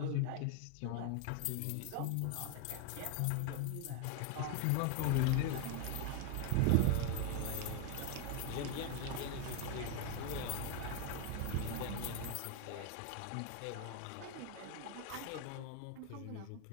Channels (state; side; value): different; both; correlation 0.01